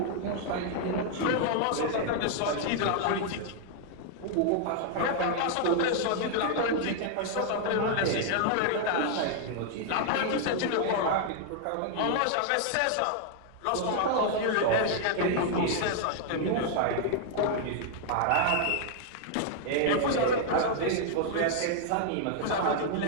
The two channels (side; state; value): both; different; correlation 0.00